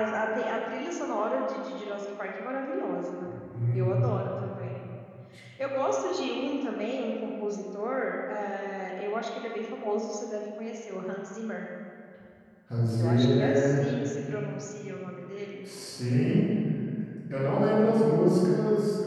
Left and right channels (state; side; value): identical; both; correlation 1.00